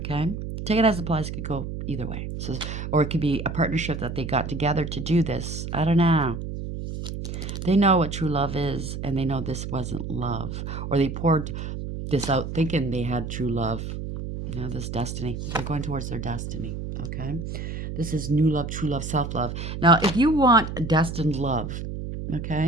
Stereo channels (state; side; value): noise; right; hum, 6 dB below the sound